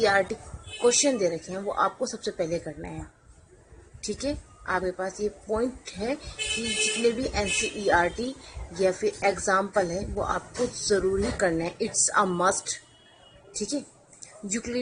क्वेश्चन दे रखे हैं, वो आपको सबसे पहले करना है। ठीक है, आपके पास ये पॉइंट है कि जितने भी NCERT या फिर एग्जाम्पल है वो आपको ज़रूरी करना है। It's a must. ठीक है,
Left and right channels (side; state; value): both; identical; correlation 1.00